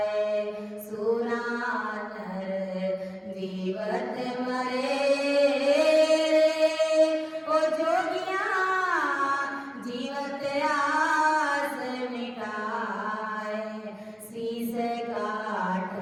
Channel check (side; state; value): both; identical; correlation 1.00